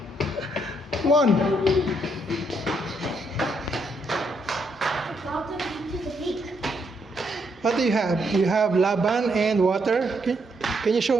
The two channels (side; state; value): both; normal; correlation 0.75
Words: Come on. What do you have? You have laban and water. Can you show